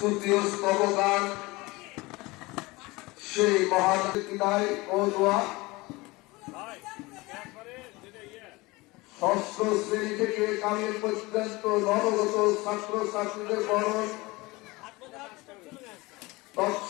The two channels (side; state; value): right; quieter; 22.6 dB